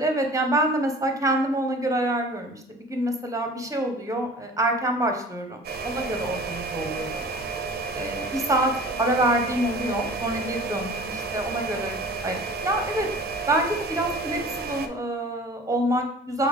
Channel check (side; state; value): both; normal; correlation 0.43